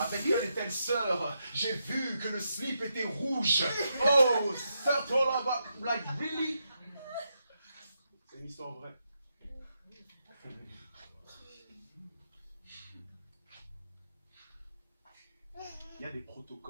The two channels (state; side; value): inverted; both; correlation -0.83